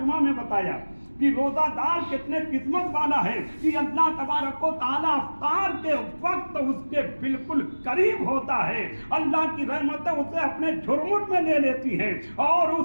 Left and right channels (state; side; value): inverted; both; correlation -1.00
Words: में बताया कि रोजादार कितने किस्मत वाला है कि अल्लाह तबारक व तआला इफ्तार के वक्त उसके बिल्कुल करीब होता है। अल्लाह की रहमतें उसे अपने झुरमुट में ले लेती हैं और